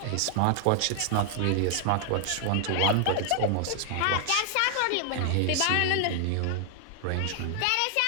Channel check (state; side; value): different; both; correlation 0.00